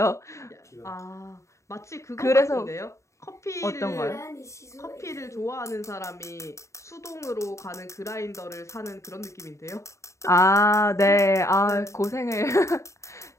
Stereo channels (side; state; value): right; late; 0.14 ms